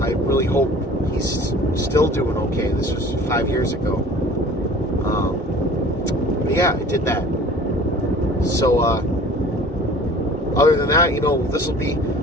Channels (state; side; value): normal; both; correlation 0.46